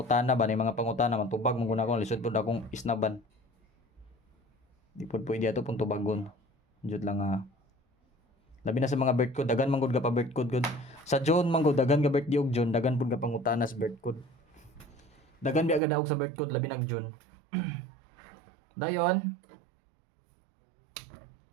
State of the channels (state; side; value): drops out; left; at 15.8 s